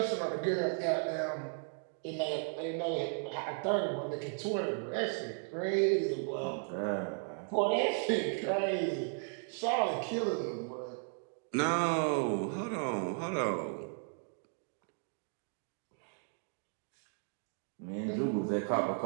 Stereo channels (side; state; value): left; silent; 54 dB below the other